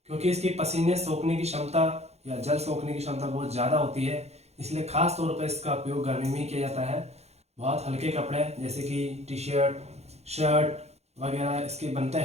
क्योंकि इसकी पसीने सोखने की क्षमता या जल सोखने की क्षमता बहुत ज़्यादा होती है, इसलिए खास तौर पर इसका उपयोग गर्मी में ही किया जाता है। बहुत हल्के कपड़े जैसे कि टी शर्ट, शर्ट वगैरह इसके बनते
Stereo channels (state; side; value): late; left; 0.31 ms